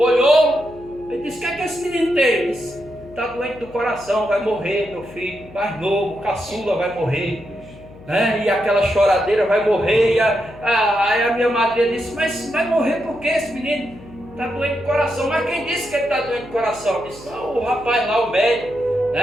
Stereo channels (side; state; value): left; noise; hum, 20 dB below the sound